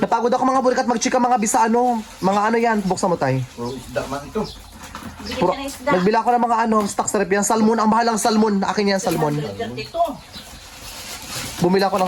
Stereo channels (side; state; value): both; identical; correlation 1.00